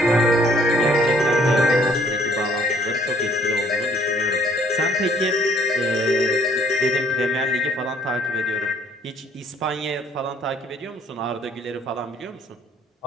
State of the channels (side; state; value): both; normal; correlation 0.61